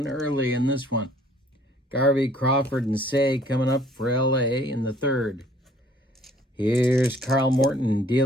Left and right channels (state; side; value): normal; both; correlation 0.58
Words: early in this one. Garvey, Crawford, and Say coming up for LA in the third. Here's Carl Morton